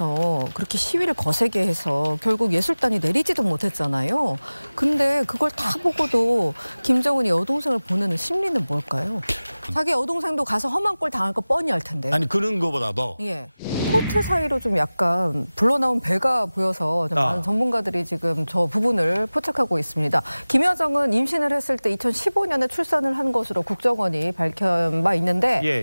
그렇게 시위를 거세게 해서 결국 예술단이 내리지도 못했잖아요. 근데 그걸 다 보고도 김정은이 여동생을 보내는 심리는 뭘까요? 자기 여동생도 가서 험한 꼴 당할 거 뻔히 알 텐데. 아니 그런 거보다도 예. 코트 사이로 좀 약간 불러나온 배가 보여서 좀 많은 전문가들이 지금 저 부분을 포착하고 있습니다. 김여정은 임신을 했을 때 2015년에 출산을 한 것으로 국정원이 밝힌 바 있는데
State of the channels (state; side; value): inverted; both; correlation -0.99